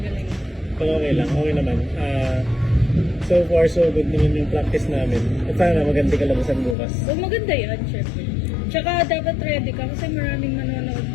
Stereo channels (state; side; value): drops out; right; at 6.8 s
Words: Pero okay lang, okay naman. So far, so good naman yung practice namin. At sana maganda kalabasan bukas. So maganda yan, syempre. Tsaka dapat ready ka kasi maraming nanonood